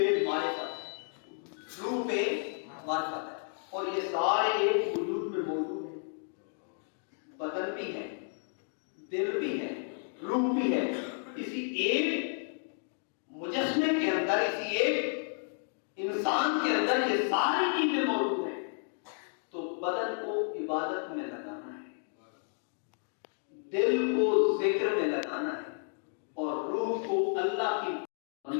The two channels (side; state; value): right; silent; 56 dB below the other